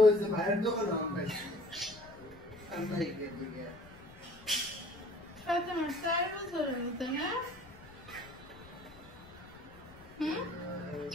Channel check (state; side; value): noise; left; rumble, 21 dB below the sound